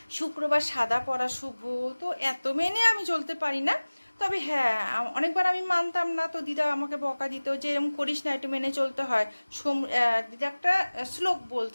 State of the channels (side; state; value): both; inverted; correlation -1.00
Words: শুক্রবার সাদা পরা শুভ, তো এত মেনে আমি চলতে পারি না। তবে হ্যাঁ, অনেকবার আমি মানতাম না, তো দিদা আমাকে বকা দিত যে এরকম করিস না, একটু মেনে চলতে হয়। দিদা একটা শ্লোক